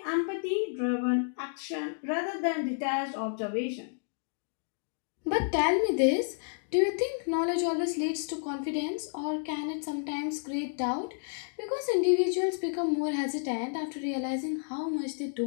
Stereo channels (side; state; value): right; silent; digital silence